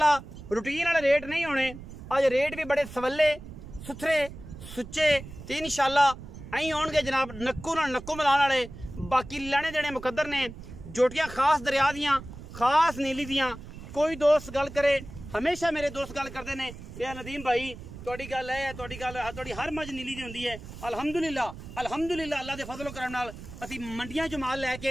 रूटीन वाले रेट नहीं होने, अज रेट भी बड़े सवले सुथरे सुच्चे ते इंशाअल्लाह अं आउणगे जनाब नक्कू नाल नक्कू मिलाने वाले। बाकी लैने देने मुकद्दर ने, जोटियां खास दरिया दियां खास नीली दियां। कोई दोस्त गल करे, हमेशा मेरे दोस्त गल करते हैं कि नदीम भाई तुहाडी गल है, तुहाडी हर मज नीली दी हुंदी है। अल्हम्दुलिल्लाह अल्हम्दुलिल्लाह अल्लाह दे फजलो करम नाल असीं मंडियां चों माल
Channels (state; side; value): noise; right; rumble, 13 dB below the sound